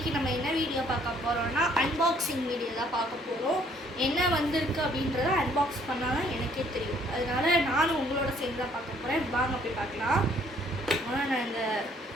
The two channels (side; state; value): both; normal; correlation 0.63